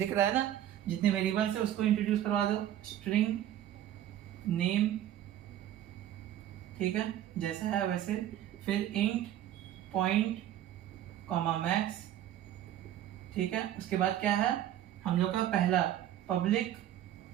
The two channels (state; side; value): quieter; left; 11.8 dB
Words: रहा है ना, जितने वेरिएबल्स है उसको इंट्रोड्यूस करवा दो, स्ट्रिंग नेम। ठीक है, जैसा है वैसे। फिर इंट पॉइंट कॉमा मैक्स। ठीक है, उसके बाद क्या है हम लोग का पहला पब्लिक